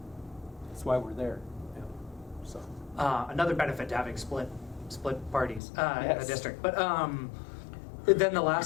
why we're there. Yeah. So Another benefit to having split parties in Yes. the district. But then the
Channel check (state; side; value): drops out; right; at 5.6 s